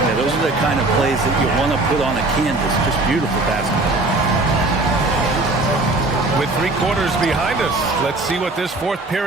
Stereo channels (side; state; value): left; quieter; 3.0 dB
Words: Yeah, those are the kind of plays that you want to put on a canvas. Just beautiful basketball. With 3 quarters behind us. Let's see what this 4th